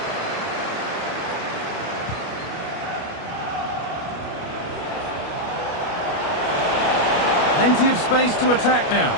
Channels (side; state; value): right; late; 29 ms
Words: Plenty of space to attack now.